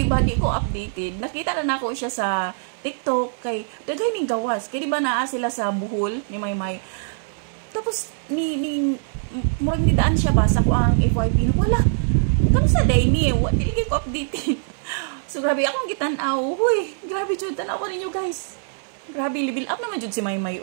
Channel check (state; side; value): silent; left; 61 dB below the other